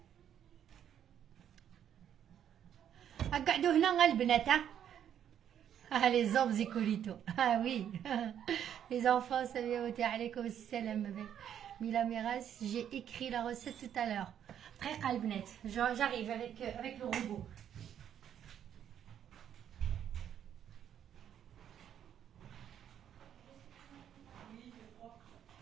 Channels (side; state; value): left; quieter; 9.6 dB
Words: قعدوا هنا البنات ها les hommes Zicolito. Ah oui. Les enfants, salam alaikum salam. Mila Miraz, j'ai écrit la recette tout à l'heure. Très calbnet. J'arrive avec le robot.